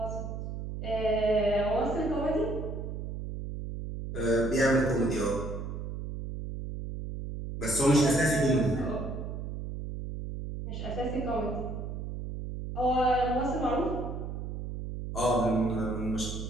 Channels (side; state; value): right; noise; hum, 6 dB below the sound